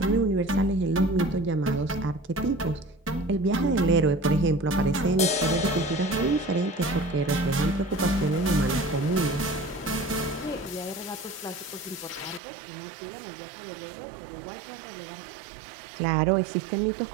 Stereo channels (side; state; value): left; drops out; at 12.4 s